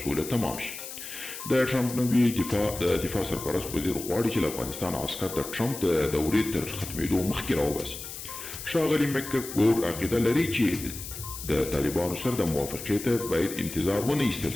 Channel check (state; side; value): noise; left; hiss, 10 dB below the sound